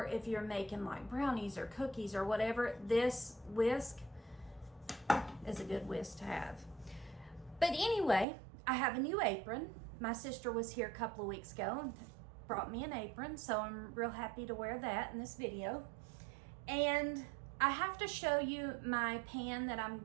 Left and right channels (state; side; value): drops out; left; at 8.2 s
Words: if you're making like brownies or cookies or whatever, this whisk is a good whisk to have. But anyway, I have a new apron. My sister was here a couple of weeks ago and brought me an apron, so I'm real happy to wear that in this video. And I have to show you my pan that I'm